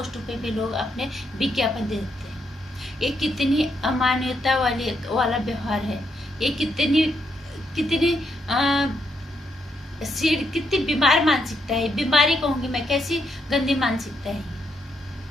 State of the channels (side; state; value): both; normal; correlation 0.78